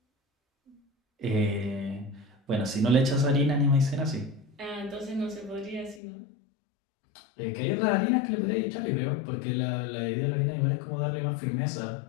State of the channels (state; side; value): drops out; right; at 6.0 s